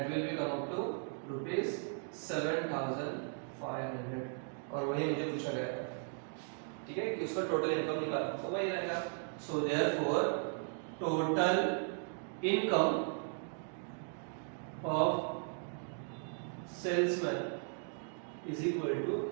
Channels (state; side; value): silent; left; 53 dB below the other